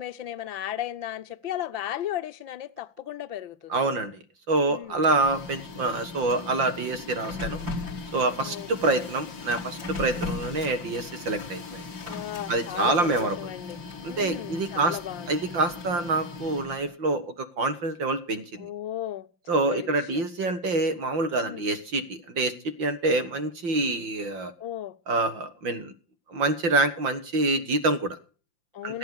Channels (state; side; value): late; left; 5.8 ms